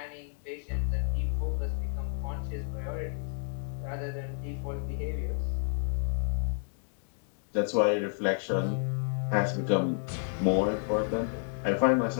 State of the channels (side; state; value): right; silent; 57 dB below the other